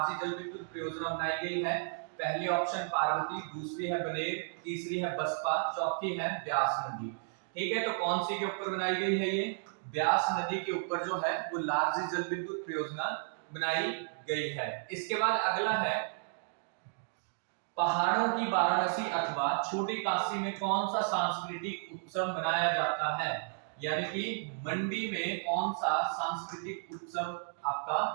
जल विद्युत परियोजना बनाई गई है। पहली ऑप्शन पार्वती, दूसरी है बनेर, तीसरी है बसपा, चौथी है ब्यास नदी। ठीक है, तो कौन सी के ऊपर बनाई गई है ये, ब्यास नदी के ऊपर जो है वो लार्जी जल विद्युत परियोजना बनाई गई है। इसके बाद अगला है, पहाड़ों की वाराणसी अथवा छोटी काशी में कौन सा सांस्कृतिक उत्सव मनाया जाता है, यानी कि मंडी में कौन सा सांस्कृतिक उत्सव आपका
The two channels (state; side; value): silent; left; digital silence